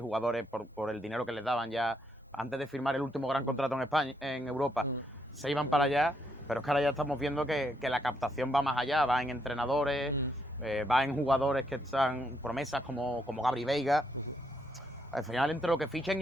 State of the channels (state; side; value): normal; both; correlation 0.75